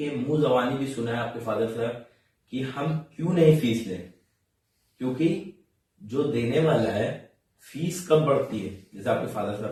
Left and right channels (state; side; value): identical; both; correlation 1.00